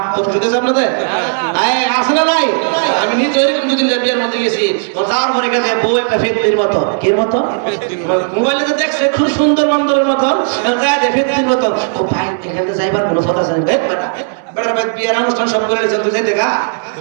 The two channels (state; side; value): silent; left; digital silence